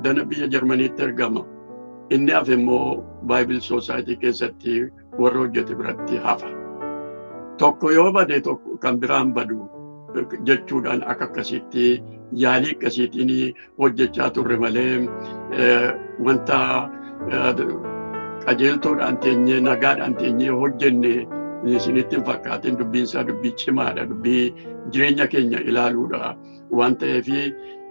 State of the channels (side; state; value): both; inverted; correlation -1.00